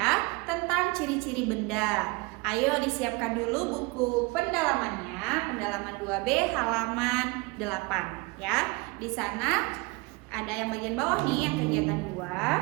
tentang ciri-ciri benda. Ayo disiapkan dulu buku pendalamannya, pendalaman 2B halaman 8 ya. Di sana ada yang bagian bawah nih yang kegiatan 2.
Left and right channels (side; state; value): left; quieter; 26.5 dB